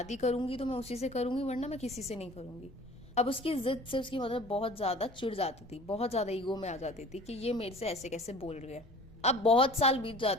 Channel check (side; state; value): left; noise; rumble, 24 dB below the sound